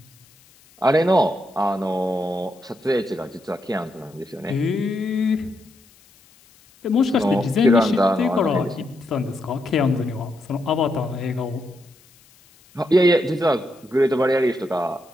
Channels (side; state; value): left; noise; hiss, 29 dB below the sound